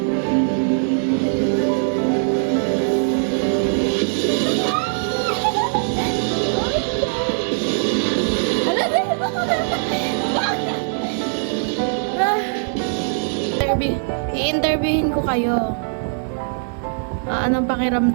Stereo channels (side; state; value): left; silent; digital silence